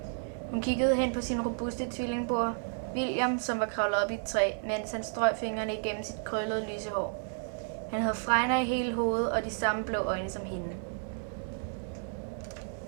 Hun kiggede hen på sin robuste tvillingbror, William, som var kravlet op i et træ, mens han strøg fingrene igennem sit krøllede lyse hår. Han havde fregner i hele hovedet og de samme blå øjne som hende.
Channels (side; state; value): left; silent; digital silence